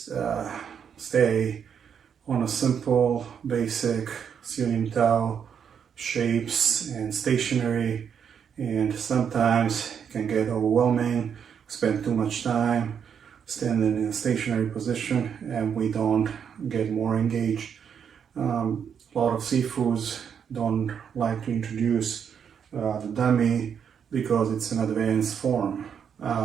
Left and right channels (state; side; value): quieter; left; 7.6 dB